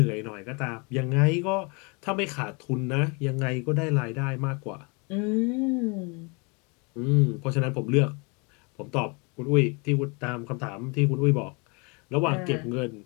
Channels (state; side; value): quieter; right; 31.4 dB